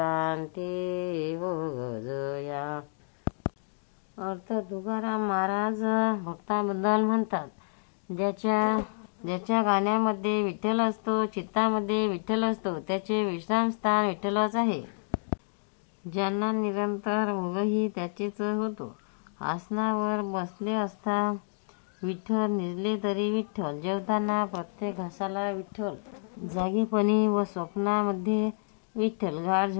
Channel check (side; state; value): right; silent; digital silence